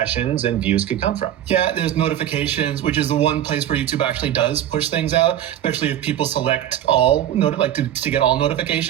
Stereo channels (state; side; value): quieter; left; 11.4 dB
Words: and views could come from. Yeah, there's notifications, which is the one place where YouTube actually does push things out, especially if people select all, to get all